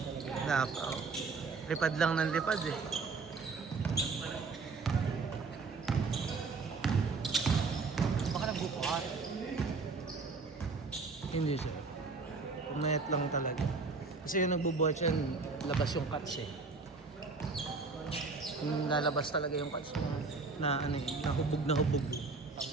Wala pa. Oh. Lipad lang ng lipad eh. Baka nagbubuhat. Hindi siya. Pumayat lang talaga. Kasi yung nagbubuhat siya, labas yung cuts eh. Yung lalabas talaga yung cuts na ano, nahubog na hubog.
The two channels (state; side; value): quieter; left; 4.2 dB